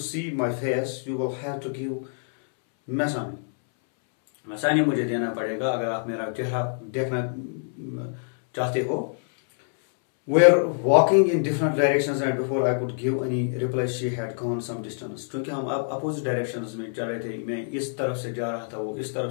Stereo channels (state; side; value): silent; right; 61 dB below the other